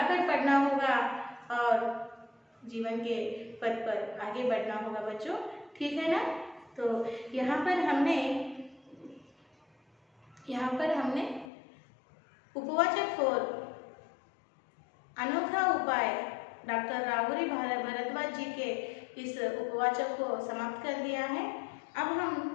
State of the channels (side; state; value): right; drops out; at 11.5 s